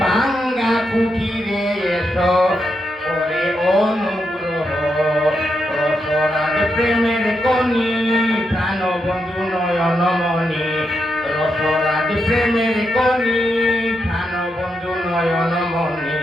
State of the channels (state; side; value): normal; both; correlation 0.84